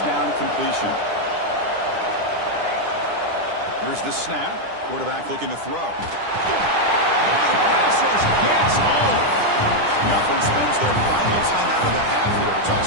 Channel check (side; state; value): left; late; 10 ms